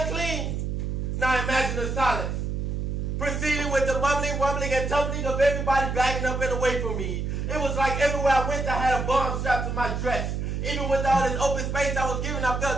Now imagine the silence, proceeding with the mumbling, rumbling, and tumbling of everybody backing up and away from me. It was like everywhere I went, I had a bomb strapped to my dress. Even with all this open space I was given, I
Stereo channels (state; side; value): noise; right; hum, 2 dB below the sound